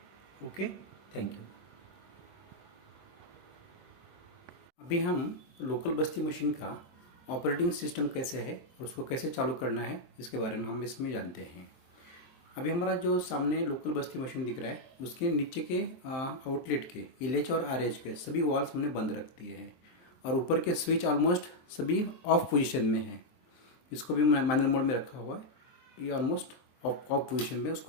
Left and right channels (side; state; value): right; late; 23 ms